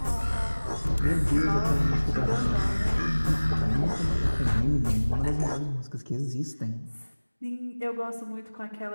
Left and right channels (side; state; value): both; inverted; correlation -1.00